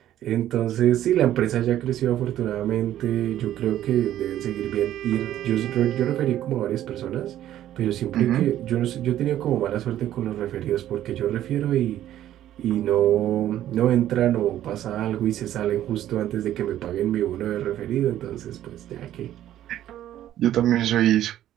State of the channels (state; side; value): quieter; left; 12.3 dB